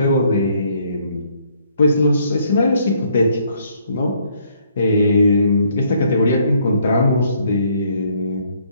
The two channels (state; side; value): inverted; both; correlation -0.67